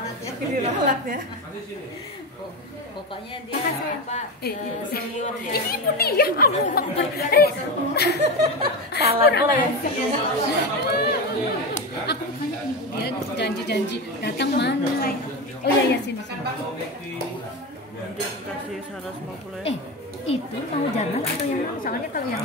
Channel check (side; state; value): both; normal; correlation 0.19